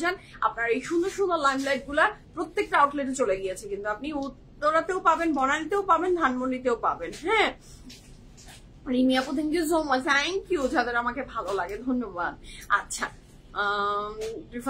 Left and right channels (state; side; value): identical; both; correlation 1.00